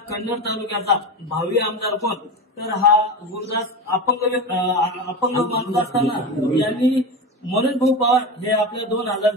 कन्नड तालुक्याचा भावी आमदार कोण. तर हा गुरुदास अपंग माणूस असताना यांनी मनोज भाऊ पवार हे आपल्या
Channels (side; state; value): both; normal; correlation 0.23